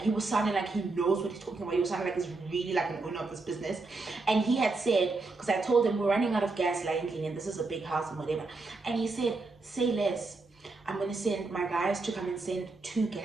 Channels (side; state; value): left; quieter; 3.6 dB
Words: he was sounding like he knows what he's talking about. He was sounding like he's really like an owner of this business. And he had said, because I told him we're running out of gas, lately, and this is a big house and whatever. And he said, say less. I'm gonna send my guys to come and send 2